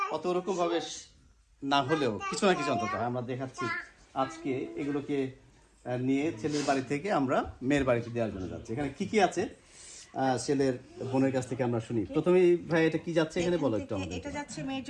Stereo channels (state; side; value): identical; both; correlation 1.00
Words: অত রকমভাবে না হলেও কিছু না কিছু অন্তত আমরা দেখাচ্ছি। আজকে এগুলোকে নিয়ে ছেলের বাড়ি থেকে আমরা মেয়ের বাড়িতে দেওয়ার জন্য যাচ্ছি। এখানে কি কি আছে ছেলের বোনের কাছ থেকে আমরা শুনি। প্রথমেই ভাই এটা কি যাচ্ছে এখানে বলো একটু আমাদের। এটা যাচ্ছে মেয়ের